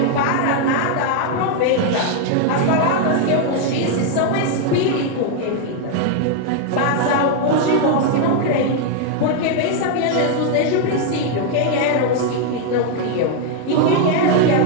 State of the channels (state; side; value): different; both; correlation 0.00